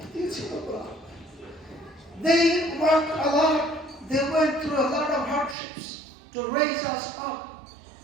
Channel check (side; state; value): left; drops out; at 5.6 s